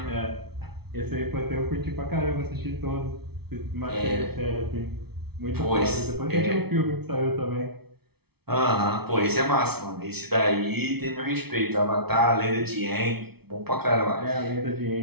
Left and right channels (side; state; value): left; late; 0.96 ms